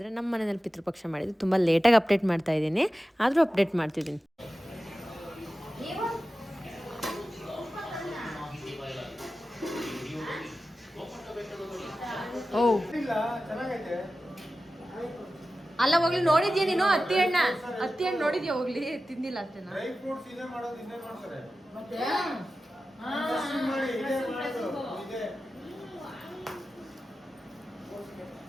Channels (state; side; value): normal; both; correlation 0.94